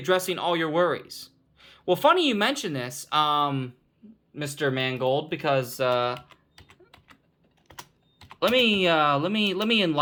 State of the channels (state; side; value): identical; both; correlation 1.00